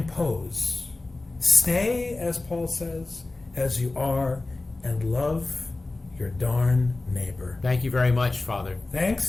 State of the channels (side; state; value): right; quieter; 3.1 dB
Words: Stay, as Paul says, as you are, and love your darn neighbor. Thank you very much, Father.